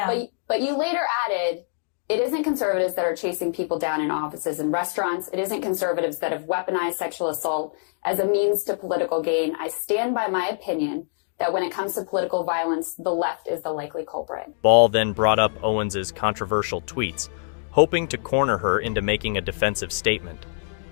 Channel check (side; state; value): right; silent; digital silence